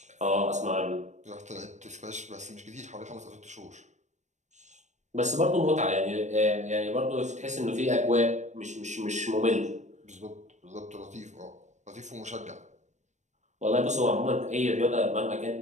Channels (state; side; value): late; left; 0.34 ms